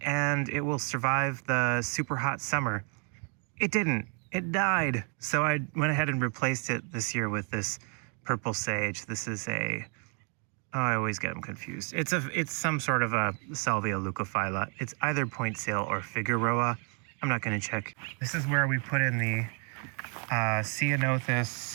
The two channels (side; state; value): left; quieter; 39.9 dB